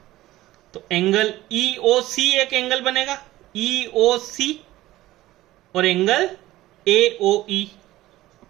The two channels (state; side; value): quieter; left; 16.3 dB